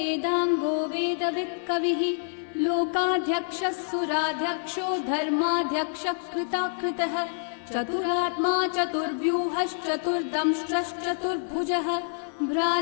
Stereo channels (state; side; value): silent; right; 58 dB below the other